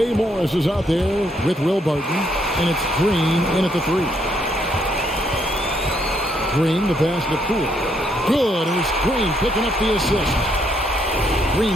Morris is out there with Will Barton, and it's Green in at the 3. Green, the pass to Poole. Good, and it's Green picking up the assist.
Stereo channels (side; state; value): both; normal; correlation 0.73